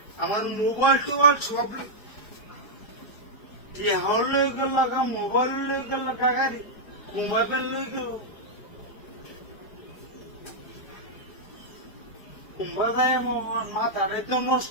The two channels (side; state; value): right; late; 4.8 ms